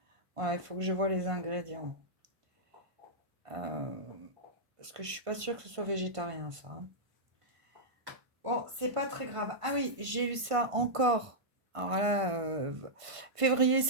Voilà, il faut que je vois les ingrédients. Parce que je suis pas sûre que ce soit végétarien, ça. Bon, c'est pas très grave. Ah oui, j'ai eu ça encore. Alors là, février,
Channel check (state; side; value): late; left; 1.5 ms